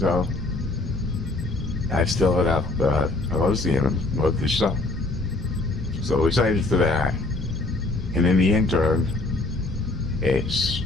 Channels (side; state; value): right; quieter; 3.0 dB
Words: I still have up hosting him with this stuff. So excited for that. And in the interim, it's